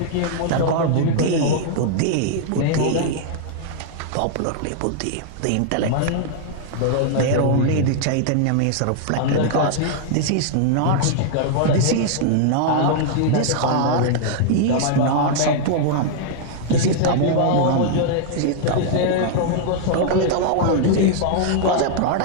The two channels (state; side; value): different; both; correlation -0.01